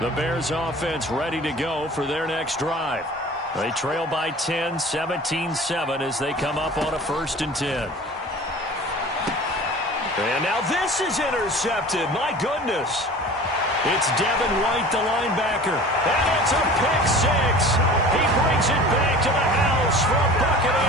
The Bears offense ready to go for their next drive. They trail by 10, 17-7 as they come up on a 1st and 10. And now this is intercepted. My goodness. It's Devin White, the linebacker. And it's a pick six. He brings it back to the house for a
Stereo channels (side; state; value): both; normal; correlation 0.42